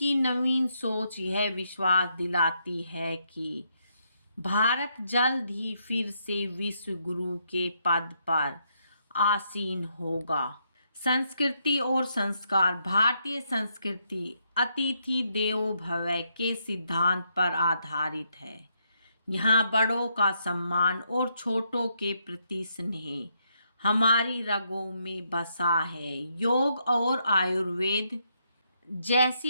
नवीन सोच यह विश्वास दिलाती है कि भारत जल्द ही फिर से विश्व गुरु के पद पर आसीन होगा। संस्कृति और संस्कार। भारतीय संस्कृति अतिथि देवो भव के सिद्धांत पर आधारित है। यहाँ बड़ों का सम्मान और छोटों के प्रति स्नेह हमारी रगों में बसा है। योग और आयुर्वेद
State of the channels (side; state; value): both; inverted; correlation -0.76